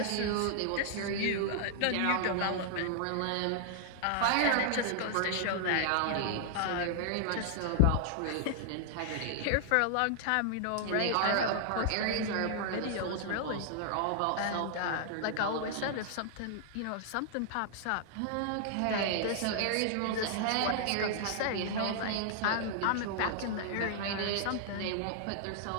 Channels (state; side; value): different; both; correlation -0.01